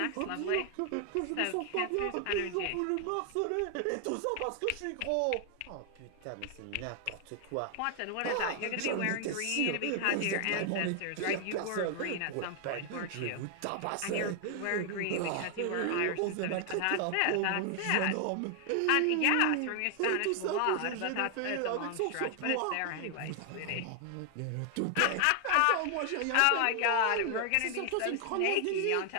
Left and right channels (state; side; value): different; both; correlation 0.00